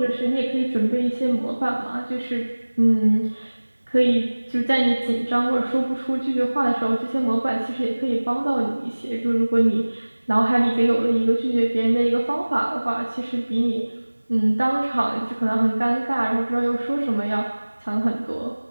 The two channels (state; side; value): inverted; both; correlation -1.00